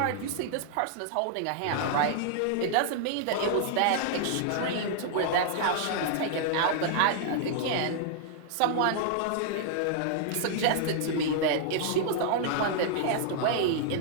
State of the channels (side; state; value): both; different; correlation -0.01